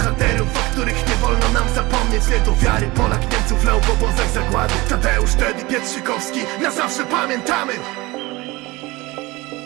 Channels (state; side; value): quieter; left; 22.0 dB